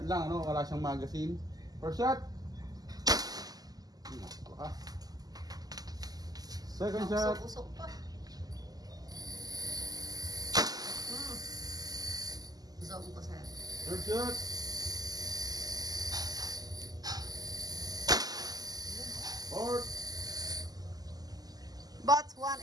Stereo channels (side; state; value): left; late; 0.18 ms